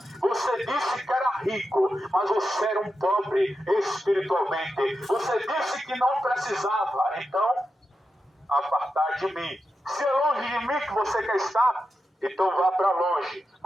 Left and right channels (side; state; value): both; normal; correlation 0.89